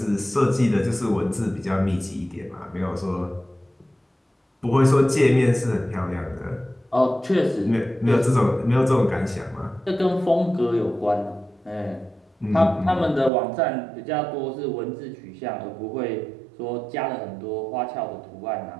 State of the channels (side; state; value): left; drops out; at 13.3 s